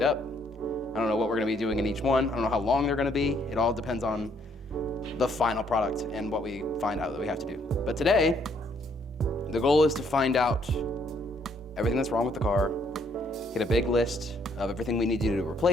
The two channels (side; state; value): both; normal; correlation 0.68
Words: up. I don't know what we're going to be doing in each one. I don't know how long they're going to be. It all depends on the final product and what we find out that we have to do. But today, the goal is to find out everything that's wrong with the car, get a big list of everything we need to